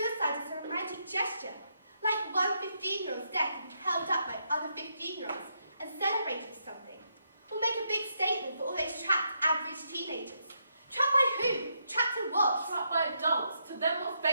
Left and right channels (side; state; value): both; inverted; correlation -0.79